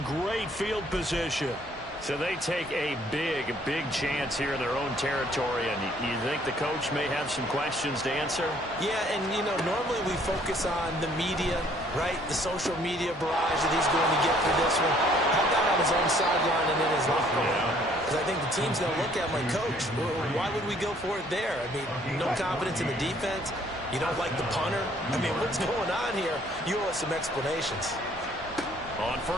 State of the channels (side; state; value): both; normal; correlation 0.61